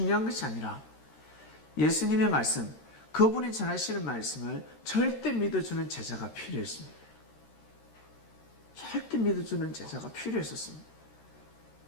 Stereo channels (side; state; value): right; late; 13 ms